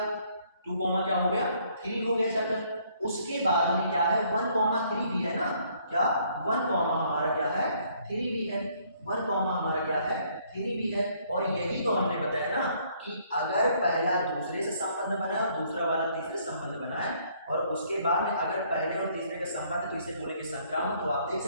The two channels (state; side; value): inverted; both; correlation -0.65